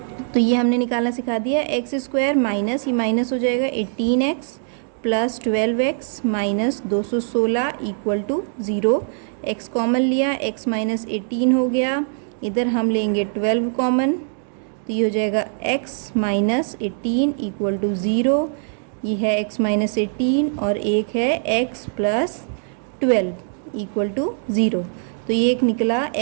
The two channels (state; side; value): silent; left; digital silence